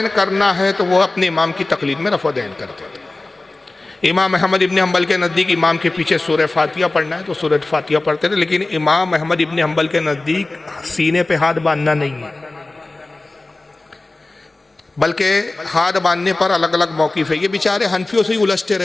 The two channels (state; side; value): quieter; right; 3.1 dB